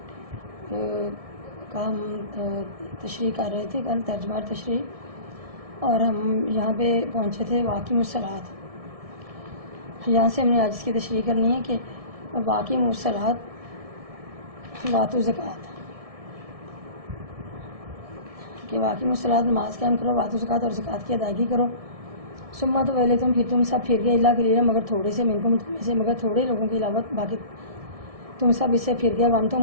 کا ہم تشریح کر رہے تھے. کل ترجمہ تشریح، اور ہم یہاں پہ پہنچے تھے واقعی الصلاۃ. یہاں سے ہم نے آج اس کی تشریح کرنی ہے کہ واقعی الصلاۃ واتو زکوٰۃ، کہ واقعی الصلاۃ نماز قائم کرو، واتو زکوٰۃ اور زکوٰۃ کی ادائیگی کرو. سما تو پہلے تم پھر تم سب پھر گئے اللہ کلیلہ مگر تھوڑے سے منکم تم میں سے، مگر تھوڑے لوگوں کے علاوہ باقی تم سب اس سے پھر گئے. ون تو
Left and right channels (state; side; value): late; left; 1.6 ms